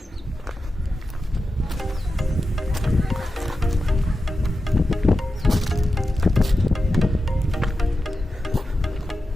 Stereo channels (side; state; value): both; normal; correlation 0.92